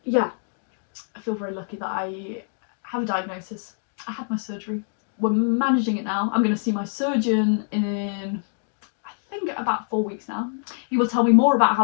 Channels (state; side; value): silent; right; digital silence